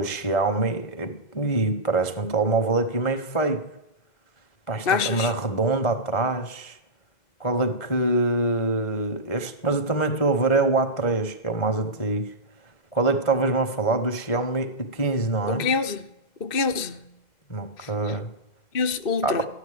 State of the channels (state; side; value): late; right; 2.0 ms